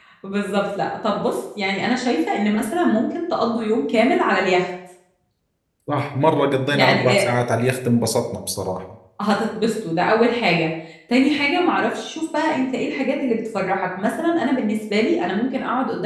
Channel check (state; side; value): identical; both; correlation 1.00